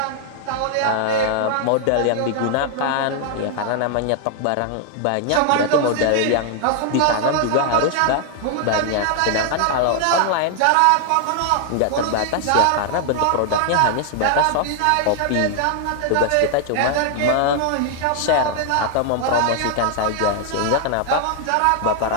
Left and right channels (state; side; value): different; both; correlation 0.00